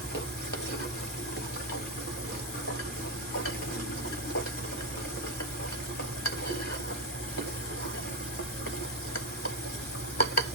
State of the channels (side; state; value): both; normal; correlation 0.06